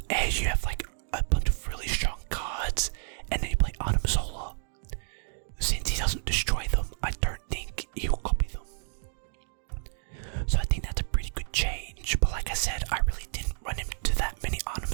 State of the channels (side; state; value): left; silent; digital silence